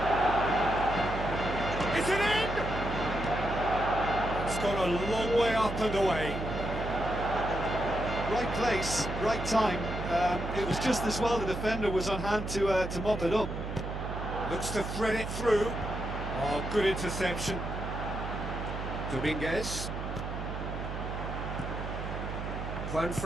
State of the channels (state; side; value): noise; right; hum, 6 dB below the sound